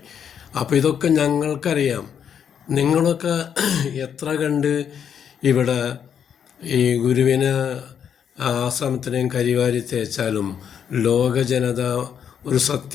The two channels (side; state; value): right; quieter; 8.2 dB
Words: അപ്പോൾ ഇതൊക്കെ ഞങ്ങൾക്കറിയാം. നിങ്ങളൊക്കെ എത്ര കണ്ട് ഇവിടെ ഈ ഗുരുവിന് ആശ്രമത്തിനെയും കരിവാരി തേച്ചാലും ലോക ജനത ഒരു